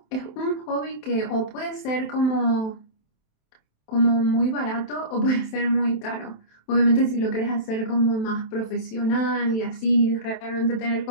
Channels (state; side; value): late; right; 27 ms